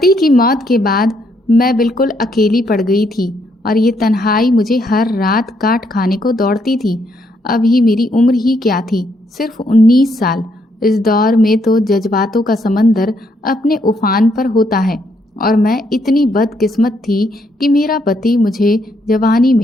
की मौत के बाद मैं बिल्कुल अकेली पड़ गई थी और ये तन्हाई मुझे हर रात काट खाने को दौड़ती थी। अभी मेरी उम्र ही क्या थी, सिर्फ 19 साल। इस दौर में तो जज्बातों का समंदर अपने उफान पर होता है और मैं इतनी बदकिस्मत थी कि मेरा पति मुझे जवानी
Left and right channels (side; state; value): both; normal; correlation 0.74